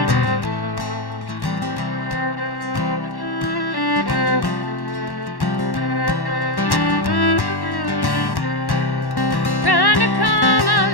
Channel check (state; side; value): late; right; 1.1 ms